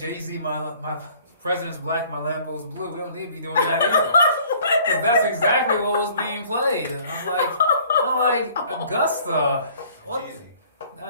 my president's black, my Lambo's blue. We don't need to be doing that either. Because that's exactly what was being played. And I'm like Augusta. What? Jeezy. I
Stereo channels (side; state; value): both; inverted; correlation -0.55